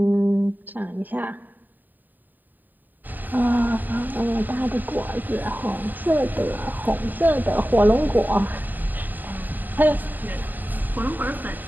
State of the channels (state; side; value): late; left; 0.089 ms